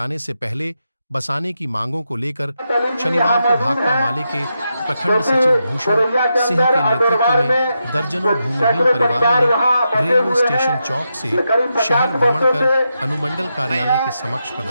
से पहले बसाने की मांगों को लेकर शनिवार को भाकपा माले के प्रखंड सचिव भूषण सिंह के नेतृत्व में दर्जनों भूमिहीन परिवारों ने रेलवे स्टेशन चौक से शहर भ्रमण कर अनुमंडल कार्यालय के समक्ष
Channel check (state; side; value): inverted; both; correlation -0.86